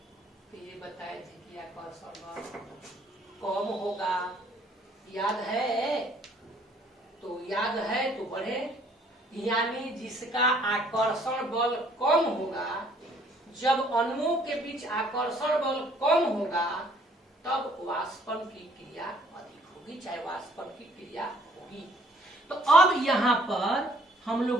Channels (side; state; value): both; normal; correlation 0.61